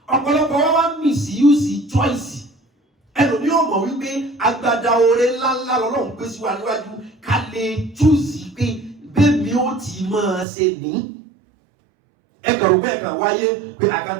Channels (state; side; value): drops out; left; at 10.5 s